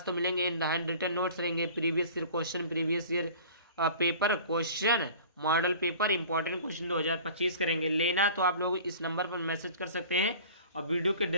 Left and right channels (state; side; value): inverted; both; correlation -0.43